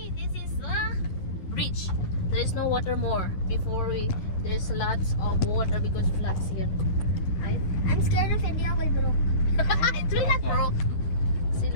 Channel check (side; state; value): right; late; 10 ms